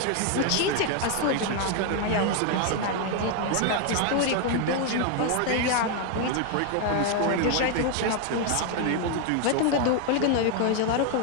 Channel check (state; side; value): different; both; correlation 0.01